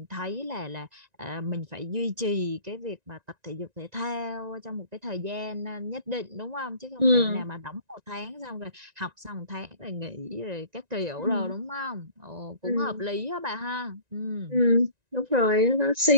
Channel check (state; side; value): late; left; 1.9 ms